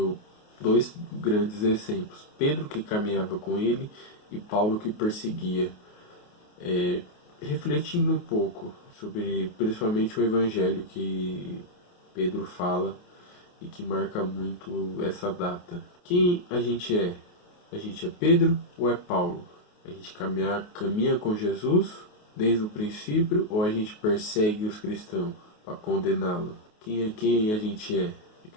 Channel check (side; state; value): right; late; 28 ms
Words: dois grandes exemplos. Pedro, que caminhava com ele, e Paulo, que perseguia. Refletindo um pouco sobre principalmente o evangelho que Pedro fala e que marca muito essa data. Quem a gente é? A gente é Pedro ou é Paulo? A gente caminha com Jesus desde o princípio ou a gente persegue os cristãos para condená-lo? Quem a gente é?